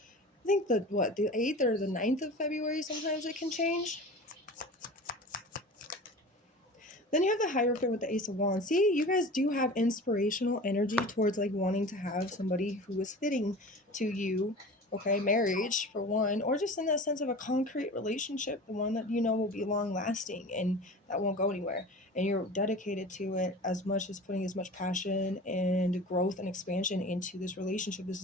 think the 8th or the 9th of February. Sometimes it can change. Then you have the Hierophant with the Ace of Wands. See, you guys do have inspirational energy towards like wanting to have somebody who is fitting to you. Okay, marriage for one, or just in that sense of a concrete relationship, the one that you know will be long lasting and that won't go anywhere. And you're dedicated to it as much as putting as much passion and growth and expansion into this relationship. This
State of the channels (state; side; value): normal; both; correlation 0.37